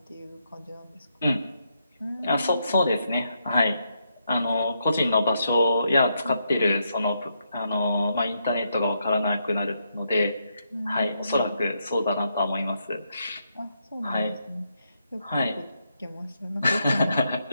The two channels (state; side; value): inverted; both; correlation -0.80